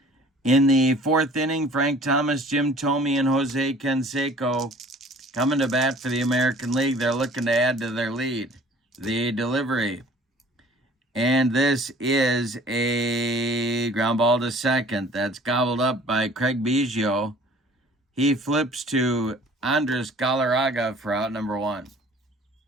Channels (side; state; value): both; normal; correlation 0.51